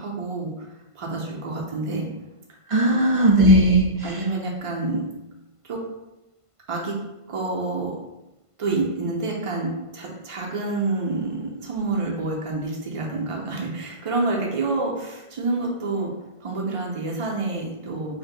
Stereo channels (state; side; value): late; left; 1.5 ms